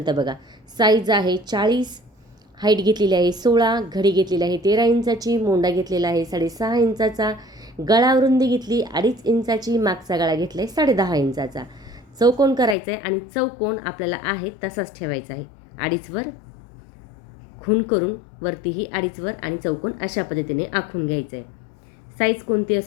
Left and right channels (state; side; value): drops out; right; at 12.8 s